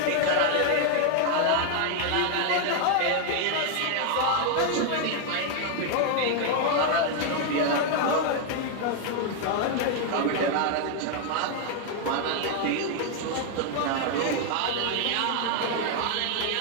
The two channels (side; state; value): both; different; correlation 0.00